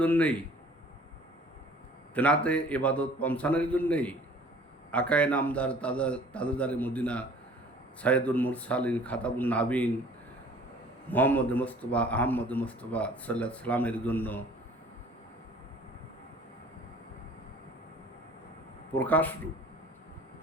জন্যেই, তেনাতে ইবাদত পৌঁছানোর জন্যেই আকায়ে নামদার তাজদারে মদিনা সাইয়্যিদুল মুরসালিন খাতাবুন নাবিন মুহাম্মদ মুস্তাফা আহমদ মুস্তাফা সাল্লাল্লাহু আলাইহি সাল্লামের জন্য প্রকাশরূপ।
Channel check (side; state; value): both; normal; correlation 0.50